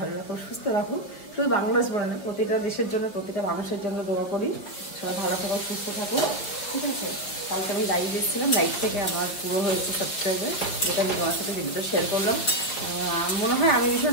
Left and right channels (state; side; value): late; right; 5.1 ms